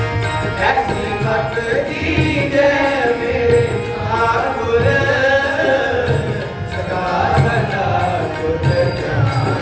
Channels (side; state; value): both; identical; correlation 1.00